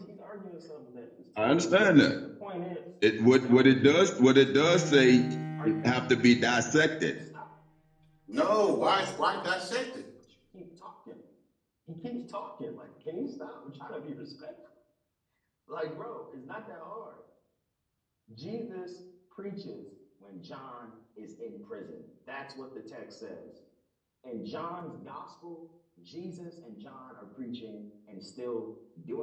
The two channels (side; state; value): both; identical; correlation 1.00